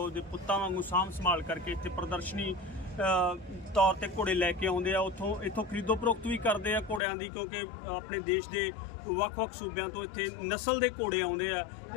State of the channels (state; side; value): drops out; right; at 7.0 s